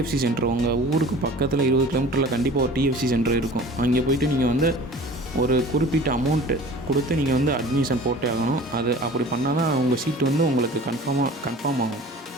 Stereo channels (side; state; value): both; normal; correlation 0.43